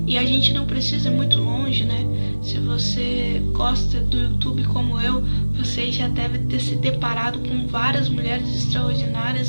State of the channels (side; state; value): both; inverted; correlation -1.00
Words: e a gente não precisa ir muito longe, Se você gosta do YouTube como eu, você já deve ter se deparado com várias mulheres